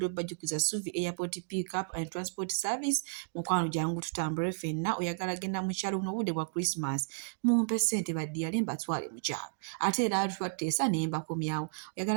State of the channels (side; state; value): left; silent; digital silence